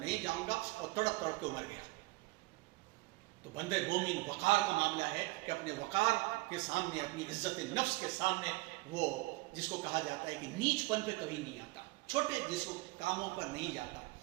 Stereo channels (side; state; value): left; quieter; 22.2 dB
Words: جاؤں گا، اور تڑپ تڑپ کے مر گیا۔ تو بندے مومن وقار کا معاملہ ہے کہ اپنے وقار کے سامنے، اپنی عزت نفس کے سامنے، وہ جس کو کہا جاتا ہے کہ نیچ پن پہ کبھی نہیں آتا، چھوٹے جس کو کاموں پر نہیں جاتا۔